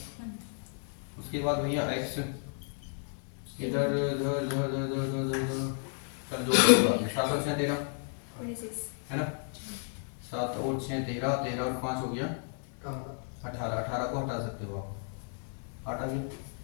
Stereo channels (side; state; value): right; silent; 56 dB below the other